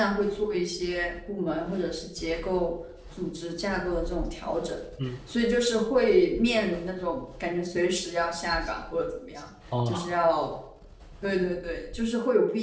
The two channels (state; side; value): identical; both; correlation 1.00